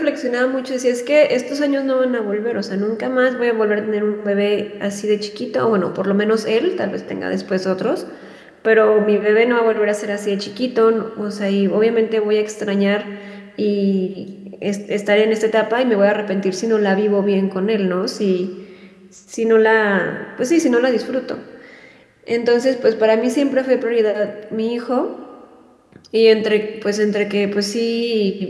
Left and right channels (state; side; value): identical; both; correlation 1.00